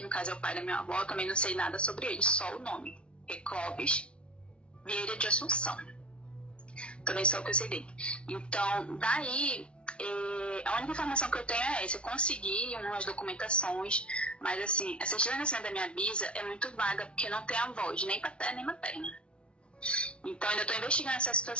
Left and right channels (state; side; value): late; right; 0.058 ms